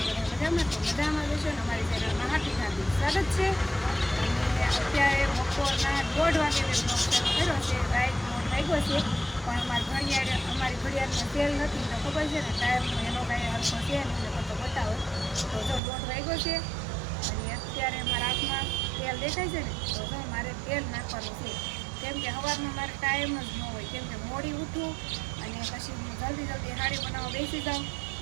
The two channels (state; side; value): drops out; left; at 15.8 s